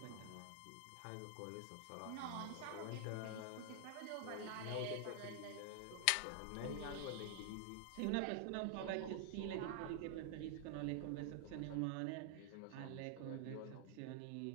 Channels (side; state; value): both; different; correlation 0.00